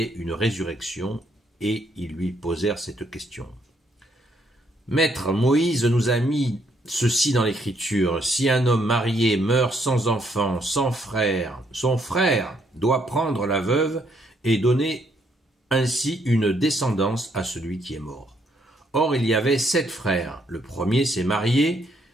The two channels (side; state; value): both; normal; correlation 0.71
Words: une résurrection, et ils lui posèrent cette question. Maître, Moïse nous a mis ceci dans l'Écriture. Si un homme marié meurt sans enfant, sans frère, son frère doit prendre la veuve et donner ainsi une descendance à celui qui est mort. Or, il y avait 7 frères. Le premier s'est marié